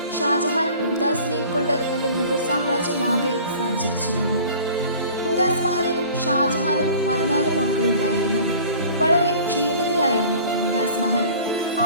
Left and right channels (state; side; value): inverted; both; correlation -0.46